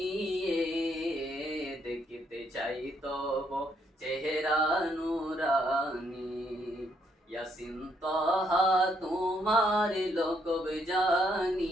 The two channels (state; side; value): normal; both; correlation 0.73